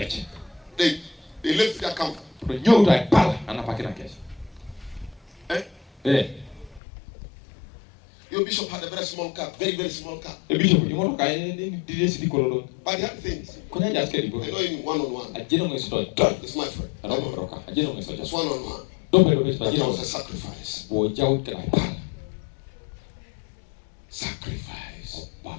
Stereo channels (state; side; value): drops out; right; at 6.8 s